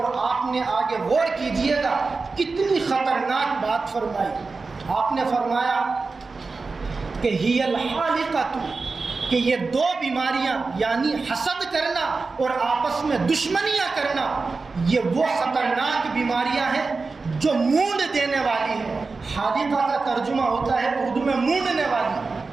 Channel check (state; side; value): quieter; left; 4.1 dB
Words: آپ نے آگے غور کیجئے گا کتنی خطرناک بات فرمائی. آپ نے فرمایا کہ ہی الحالقۃ کہ یہ دو بیماریاں یعنی حسد کرنا اور آپس میں دشمنیاں کرنا یہ وہ خطرناک بیماریاں ہیں جو مونڈ دینے والی ہیں. حادثہ کا ترجمہ ہوتا ہے اردو میں مونڈنے والی.